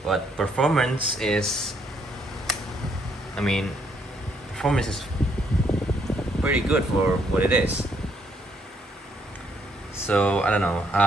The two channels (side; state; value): both; normal; correlation 0.71